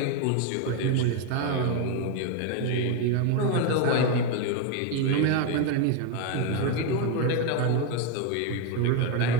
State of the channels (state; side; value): different; both; correlation 0.02